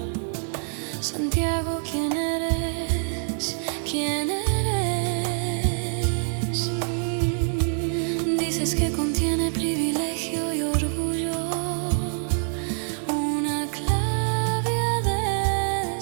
Santiago, ¿quién eres? ¿Quién eres? Dices que contiene privilegio y orgullo, una clave a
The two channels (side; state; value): left; silent; digital silence